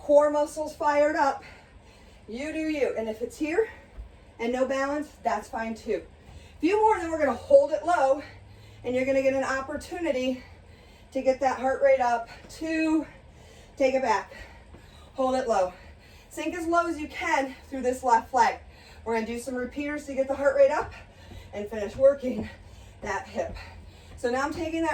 muscles fired up. You do you. And if it's here and no balance, that's fine too. A few more, then we're gonna hold it low, and you're gonna get an opportunity to get that heart rate up. 2, take it back, hold it low. Sink as low as you can through this left leg. We're gonna do some repeaters to get the heart rate up and finish working that hip. So now I'm taking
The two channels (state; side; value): identical; both; correlation 1.00